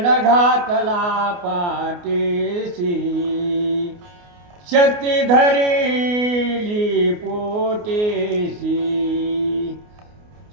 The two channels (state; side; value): late; left; 29 ms